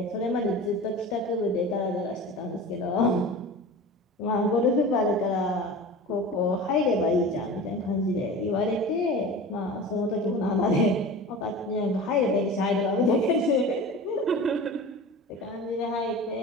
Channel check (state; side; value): normal; both; correlation 0.34